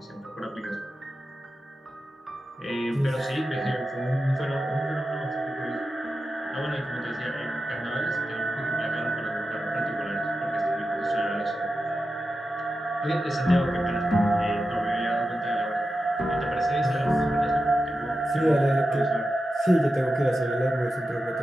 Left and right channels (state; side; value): normal; both; correlation 0.91